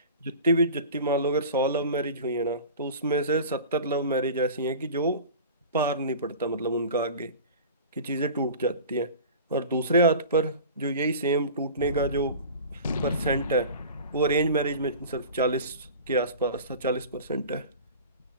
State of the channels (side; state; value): both; inverted; correlation -0.37